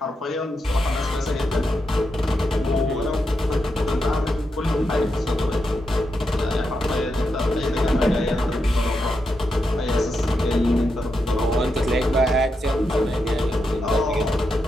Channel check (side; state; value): both; normal; correlation 0.85